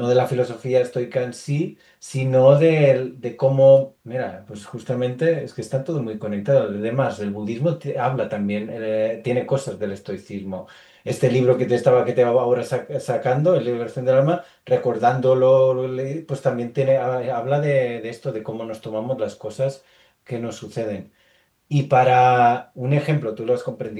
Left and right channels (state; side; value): identical; both; correlation 1.00